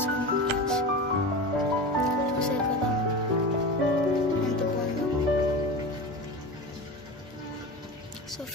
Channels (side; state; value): both; normal; correlation 0.27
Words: ఫ్రెండ్స్. చూసారు కదా ఎంత బాగుందో. So